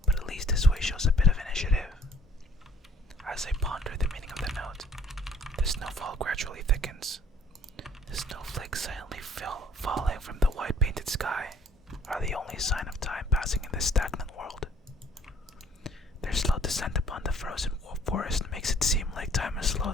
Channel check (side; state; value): both; normal; correlation 0.58